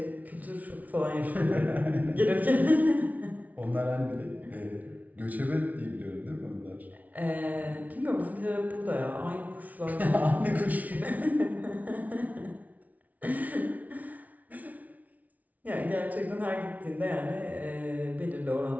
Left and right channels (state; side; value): late; left; 0.073 ms